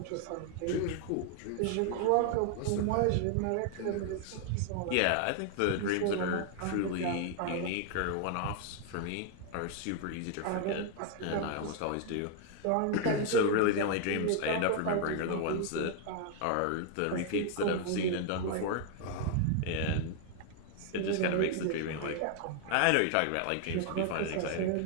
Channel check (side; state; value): both; different; correlation 0.00